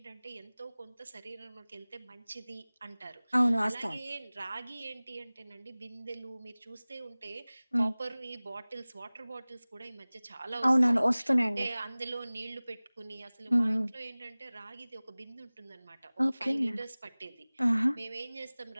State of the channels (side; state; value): both; inverted; correlation -0.99